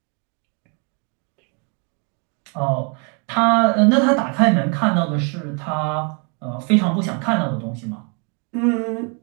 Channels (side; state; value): left; quieter; 36.4 dB